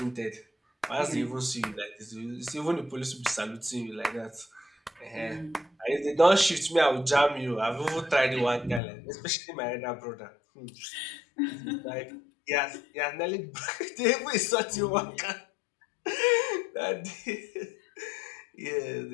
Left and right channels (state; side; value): drops out; right; at 8.8 s